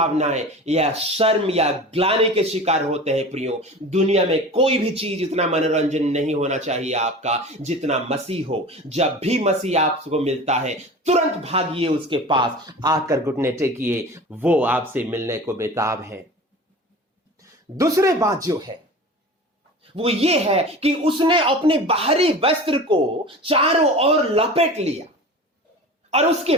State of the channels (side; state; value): both; normal; correlation 0.36